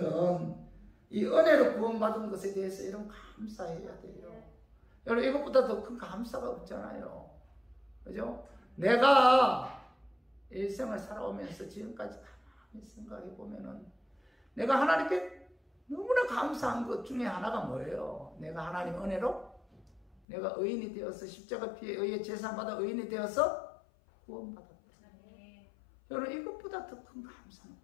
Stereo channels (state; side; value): drops out; right; at 20.2 s